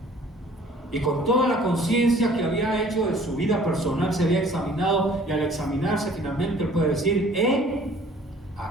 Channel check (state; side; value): normal; both; correlation 0.53